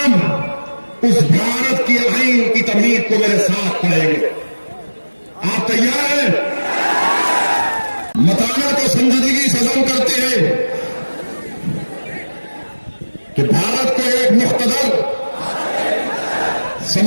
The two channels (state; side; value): inverted; both; correlation -1.00